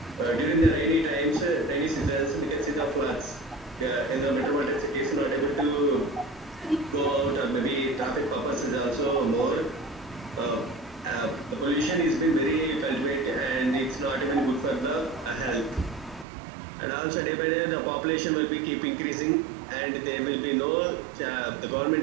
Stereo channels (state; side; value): drops out; left; at 16.2 s